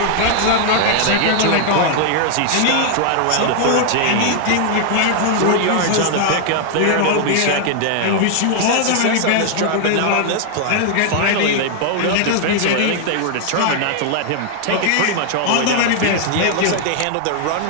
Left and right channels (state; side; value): different; both; correlation 0.00